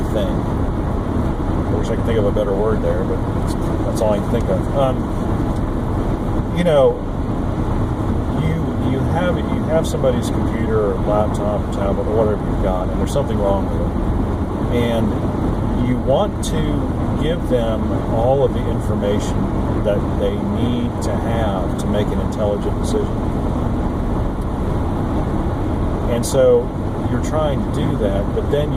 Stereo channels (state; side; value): identical; both; correlation 1.00